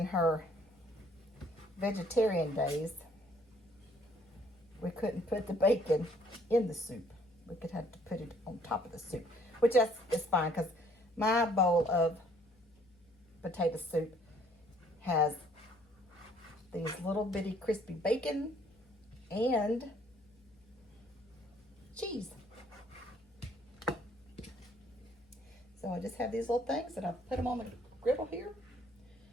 her vegetarian days, we couldn't put the bacon in the soup. We could have to put it on top of the soup, which is fine because my bowl of potato soup has these little bitty crispy bacon and cheese. So I just have these little things and I put them on the griddle here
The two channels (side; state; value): left; noise; hum, 30 dB below the sound